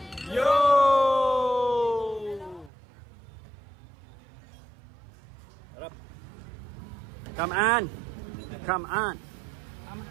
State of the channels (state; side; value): drops out; left; at 2.7 s